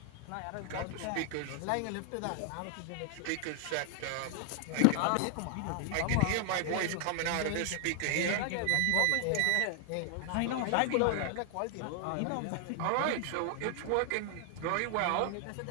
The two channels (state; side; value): different; both; correlation 0.00